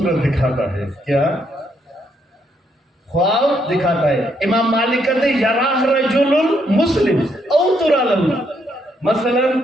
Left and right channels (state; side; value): normal; both; correlation 0.74